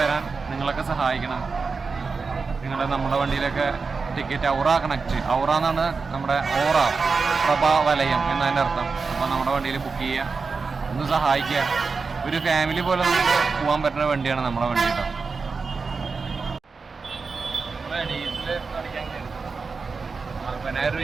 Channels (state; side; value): quieter; left; 4.6 dB